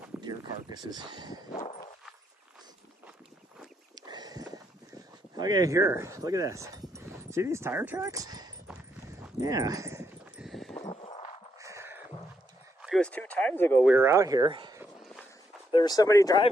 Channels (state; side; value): normal; both; correlation 0.77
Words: deer carcasses. Okay, here, look at this. See these tire tracks? Yeah. It was 2 times ago we were out here. There was somebody